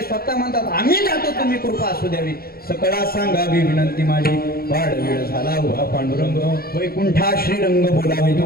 स्वतः म्हणतात आम्ही जातो तुम्ही कृपा असू द्यावी सकळा सांगावी विनंती माझी वाढ वेळ झाला उभा पांडुरंग वैकुंठा श्रीरंग बोलावे.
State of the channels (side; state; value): right; late; 0.44 ms